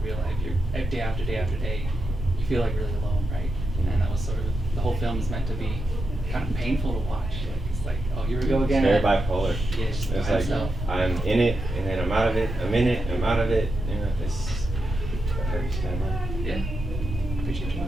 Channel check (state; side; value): normal; both; correlation 0.86